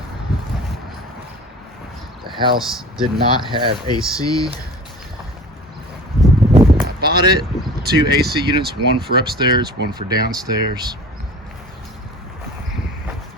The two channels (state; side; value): normal; both; correlation 0.41